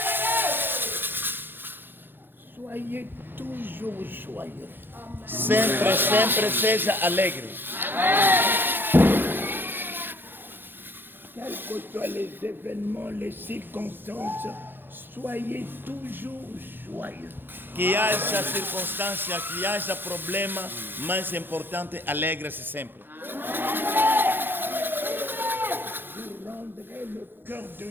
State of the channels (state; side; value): late; left; 0.099 ms